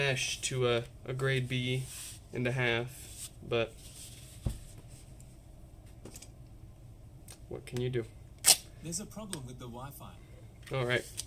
to a grade B and a half, but what can you do? There's a problem with the Wi-Fi. Alright.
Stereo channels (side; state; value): both; identical; correlation 1.00